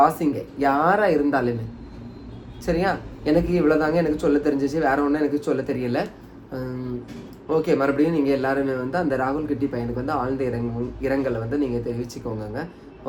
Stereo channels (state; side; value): identical; both; correlation 1.00